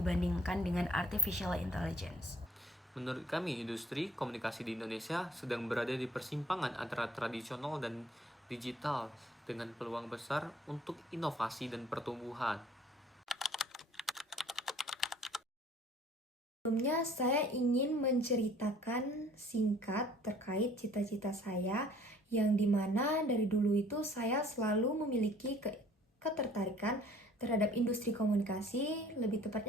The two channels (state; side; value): normal; both; correlation 0.55